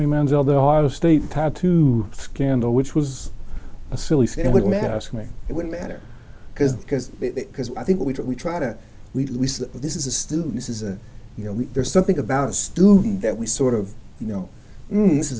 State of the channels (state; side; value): identical; both; correlation 1.00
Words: Manziel, the Ohio State tattoo scandal, which was a silly scandal, if you ask me. It wouldn't matter, because I think what this is a student. This is there's something about a student that we sort of this is